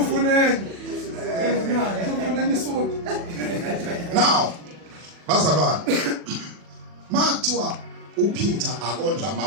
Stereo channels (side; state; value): left; late; 40 ms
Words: Usufuneni isuthu. Now bazalwane mathiwa uPeter akondla